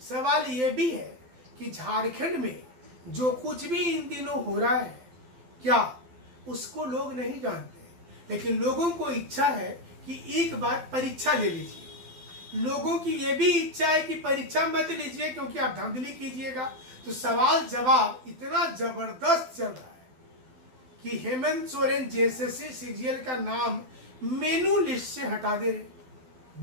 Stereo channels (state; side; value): late; left; 12 ms